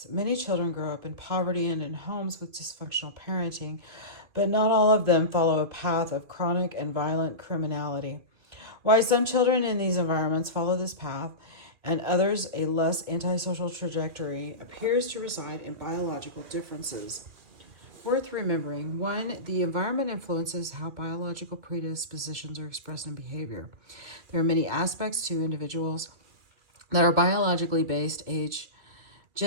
Many children grow up in poverty and in homes with dysfunctional parenting, but not all of them follow a path of chronic and violent criminality. Why some children in these environments follow this path and others a less antisocial trajectory appears to reside in biological differences. Worth remembering: 1. The environment influences how biological predispositions are expressed in behavior. There are many aspects to individuals that are biologically based: age,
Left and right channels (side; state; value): left; late; 2.3 ms